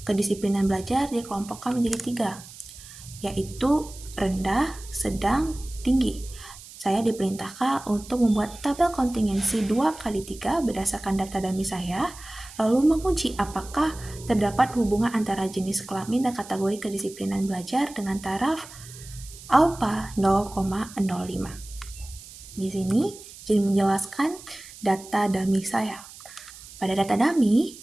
Kedisiplinan belajar dikelompokkan menjadi 3, yaitu rendah, sedang, tinggi. Saya diperintahkan untuk membuat tabel kontingensi 2x3 berdasarkan data dummy saya, lalu menguji apakah terdapat hubungan antara jenis kelamin dan kategori kedisiplinan belajar dengan taraf alfa 0,05. Di sini jadi menjelaskan data dummy saya. Pada data dummy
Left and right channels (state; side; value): noise; right; hiss, 17 dB below the sound